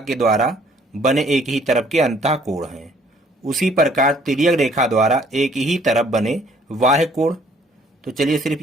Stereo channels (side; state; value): both; normal; correlation 0.61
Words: द्वारा बने एक ही तरफ के अंतःकोण हैं। उसी प्रकार तिर्यक रेखा द्वारा एक ही तरफ बने बाह्य कोण, तो चलिए सिर्फ